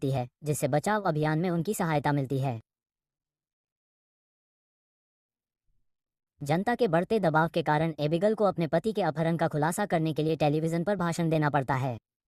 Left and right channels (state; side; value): identical; both; correlation 1.00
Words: है जिससे बचाव अभियान में उनकी सहायता मिलती है। जनता के बढ़ते दबाव के कारण एबिगल को अपने पति के अपहरण का खुलासा करने के लिए टेलीविजन पर भाषण देना पड़ता है।